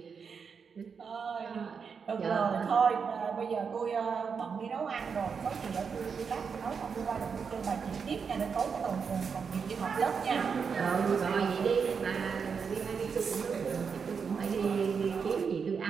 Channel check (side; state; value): left; quieter; 6.0 dB